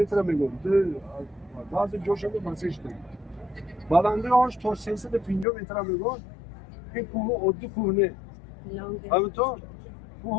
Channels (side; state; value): right; drops out; at 5.5 s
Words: میگم بعضی جاشو مسیج داریم بلندی آنش تا 350 متر میگم این کوه عادی کوه نه همینطور